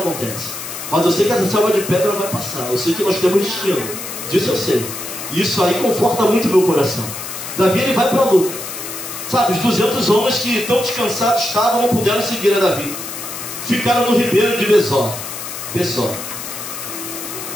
Mas eu sei que essa selva de pedra vai passar. Eu sei que nós temos destino. Disso eu sei. E isso aí conforta muito o meu coração. Davi, ele vai para a luta. Sabe, os 200 homens que tão descansados estavam não puderam seguir a Davi. Ficaram no ribeiro de Besor.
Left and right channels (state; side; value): noise; left; hiss, 8 dB below the sound